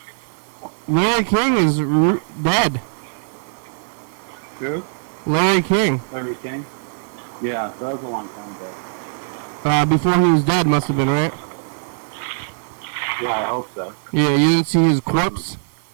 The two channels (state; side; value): silent; left; digital silence